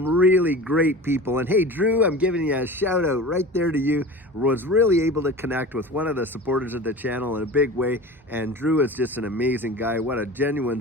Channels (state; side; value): normal; both; correlation 0.35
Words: really great people. And hey, Drew, I'm giving you a shout out right there to you. Was really able to connect with one of the supporters of the channel in a big way. And Drew is just an amazing guy. What a